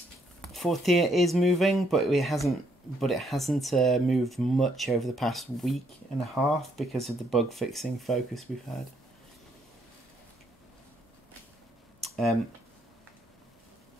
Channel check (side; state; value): both; normal; correlation 0.71